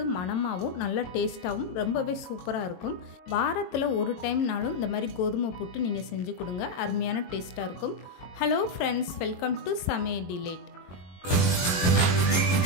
மணமாகவும் நல்லா டேஸ்ட்டாகவும் ரொம்பவே சூப்பராக இருக்கும். வாரத்தில் ஒரு டைம்னாலும் இந்த மாதிரி கோதுமை புட்டு நீங்கள் செஞ்சு கொடுங்க, அருமையான டேஸ்ட்டாக இருக்கும். ஹலோ ஃப்ரெண்ட்ஸ், வெல்கம் டு சமையல் டிலேட்.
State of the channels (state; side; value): late; right; 22 ms